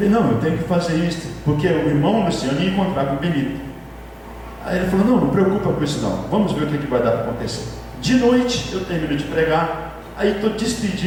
não, eu tenho que fazer isso, porque o irmão Luciano ia encontrar com o Benito. Aí ele falou: não preocupa com isso não, vamos ver o que vai dar para acontecer. De noite, eu termino de pregar, aí estou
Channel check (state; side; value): identical; both; correlation 1.00